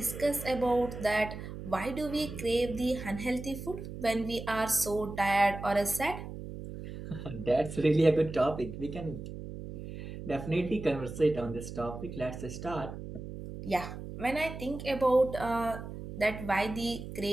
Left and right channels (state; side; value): noise; right; hum, 10 dB below the sound